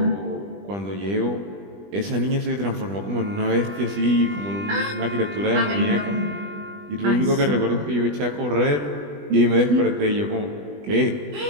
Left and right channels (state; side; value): late; left; 20 ms